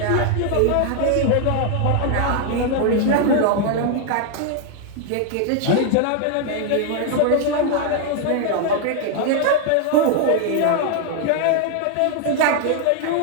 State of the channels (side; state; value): both; different; correlation 0.00